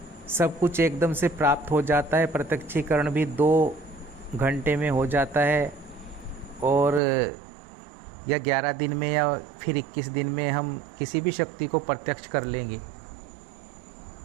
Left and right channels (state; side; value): drops out; left; at 7.0 s